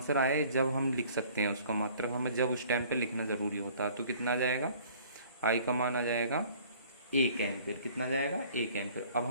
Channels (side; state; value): both; inverted; correlation -0.53